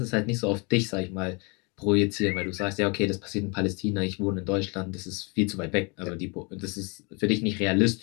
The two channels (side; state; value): right; quieter; 31.0 dB